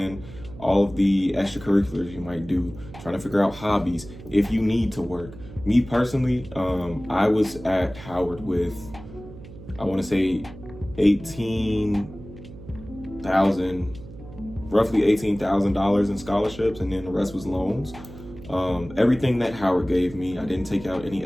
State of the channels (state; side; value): noise; right; hum, 16 dB below the sound